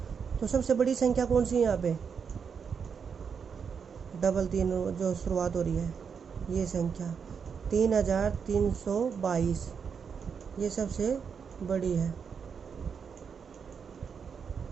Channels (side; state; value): left; quieter; 6.5 dB